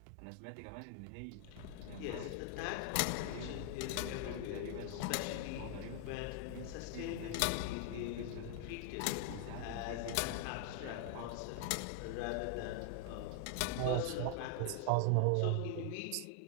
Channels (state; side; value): different; both; correlation 0.00